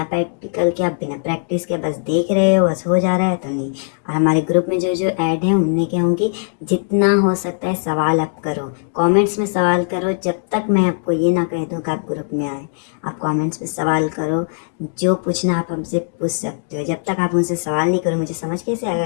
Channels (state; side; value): silent; right; digital silence